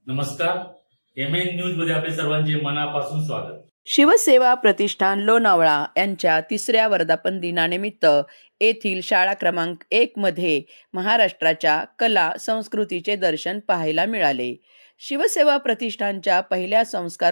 नमस्कार. MN news मध्ये आपले सर्वांचे मनापासून स्वागत. शिवसेवा प्रतिष्ठान लोणावळा यांच्या 3ऱ्या वर्धापन दिनानिमित्त येथील शाळा क्रमांक 1 मध्ये महाराष्ट्राच्या कला संस्कृतीचे दर्शन पाहायला मिळाले. शिवसेवा प्रतिष्ठानच्या पहिल्या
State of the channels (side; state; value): both; inverted; correlation -1.00